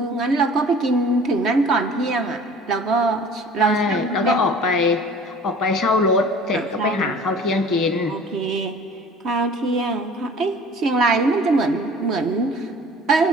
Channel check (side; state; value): both; normal; correlation 0.46